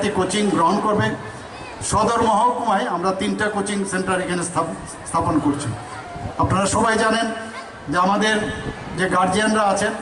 কোচিং গ্রহণ করবে, সদর মহকুমায় আমরা 3টা কোচিং সেন্টার এখানে স্থাপন করছি। আপনারা সবাই জানেন যে আমাদের যে গার্জিয়ানরা আছেন,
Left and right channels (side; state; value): both; identical; correlation 1.00